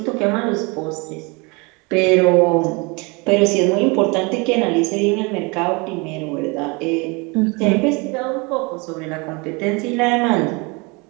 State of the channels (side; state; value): left; quieter; 28.4 dB